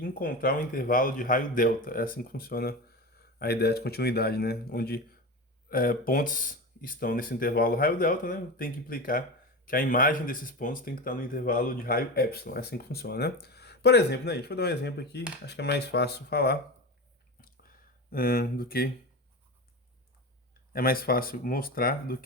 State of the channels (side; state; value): both; normal; correlation 0.25